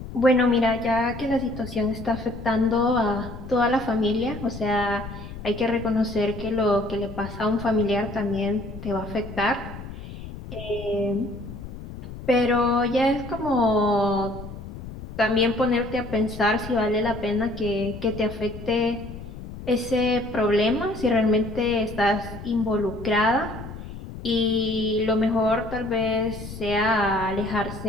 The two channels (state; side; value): noise; left; rumble, 12 dB below the sound